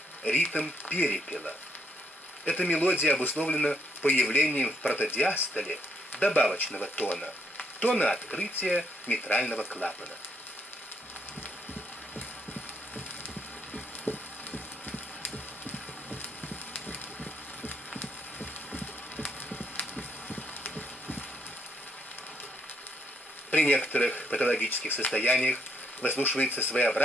ритм перепела. Эта мелодия обусловлена появлением в протодиастоле добавочного тона, тона открытия митрального клапана. При некоторых патологических состояниях выслушивается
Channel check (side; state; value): both; normal; correlation 0.73